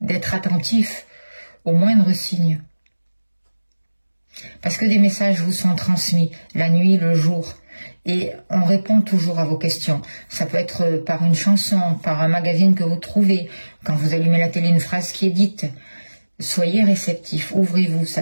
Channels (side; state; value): both; inverted; correlation -1.00